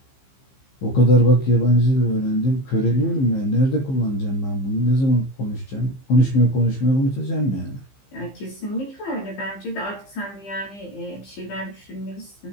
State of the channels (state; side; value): late; right; 15 ms